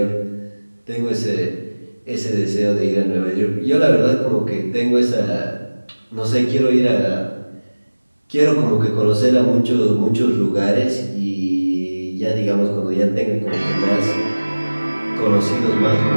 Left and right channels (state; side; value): inverted; both; correlation -1.00